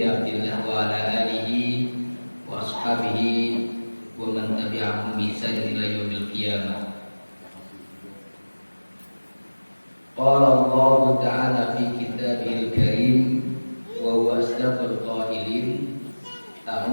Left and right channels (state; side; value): inverted; both; correlation -1.00